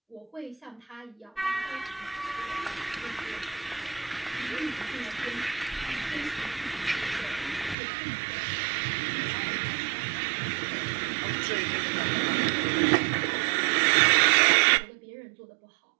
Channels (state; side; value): drops out; left; at 7.8 s